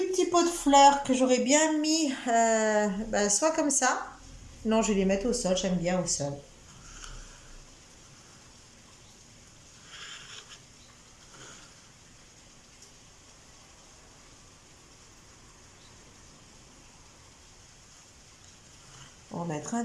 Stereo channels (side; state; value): both; identical; correlation 1.00